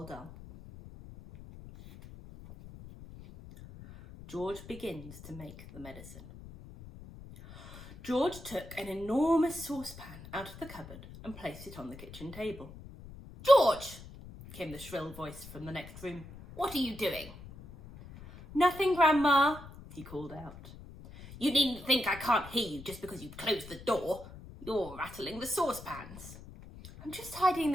Dahl. George begins to make the medicine. George took an enormous saucepan out of the cupboard and placed it on the kitchen table. "George!" came the shrill voice from the next room. "What are you doing?" "Nothing, Grandma," he called out. "You needn't think I can't hear you just because you've closed the door. You're rattling the saucepans." "I'm just tidying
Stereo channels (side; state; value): left; noise; rumble, 16 dB below the sound